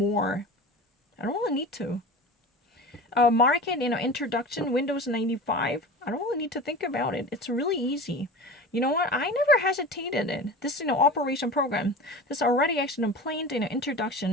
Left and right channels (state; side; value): normal; both; correlation 0.34